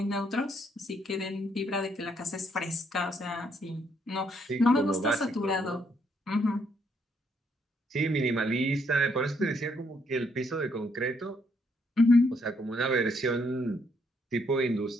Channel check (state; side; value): normal; both; correlation 0.72